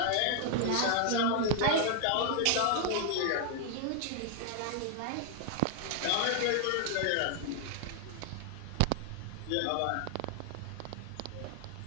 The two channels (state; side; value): different; both; correlation 0.00